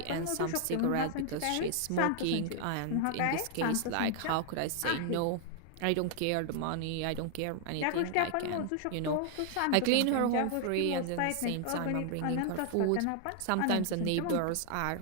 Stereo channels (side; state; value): both; different; correlation 0.00